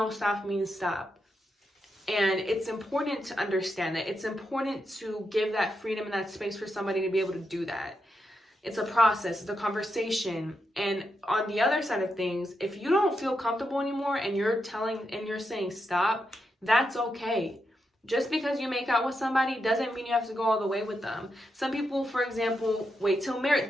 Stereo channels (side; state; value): both; normal; correlation 0.85